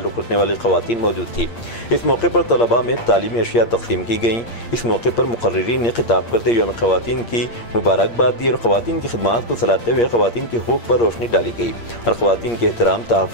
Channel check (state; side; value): late; right; 8.6 ms